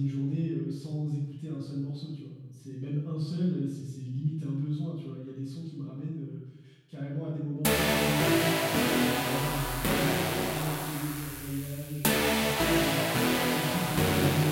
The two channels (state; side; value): identical; both; correlation 1.00